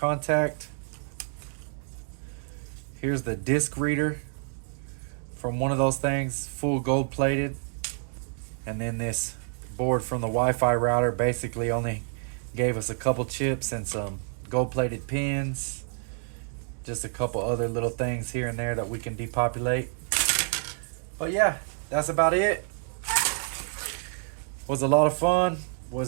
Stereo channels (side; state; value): left; silent; 59 dB below the other